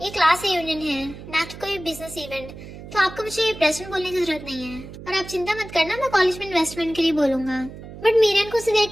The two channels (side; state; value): right; noise; hum, 14 dB below the sound